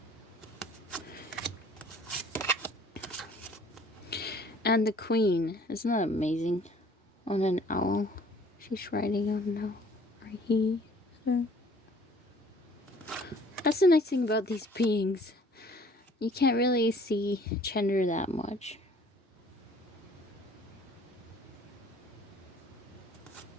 And the Queen. Isn't that amazing? On an owl. She's riding on an owl. Or he. So. That's the nice thing about these beings. You can't really see gender that much.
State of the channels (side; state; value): both; normal; correlation 0.55